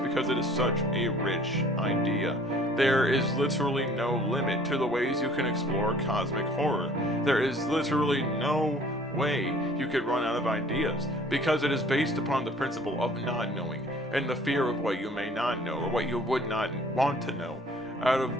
it is such a rich idea. There is literally no limit to the ways you can explore cosmic horror. There is literally no way you could run out of ideas because it is based upon the principle of not knowing and the fear of what you may not know or what you would not want to know, out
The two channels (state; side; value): normal; both; correlation 0.53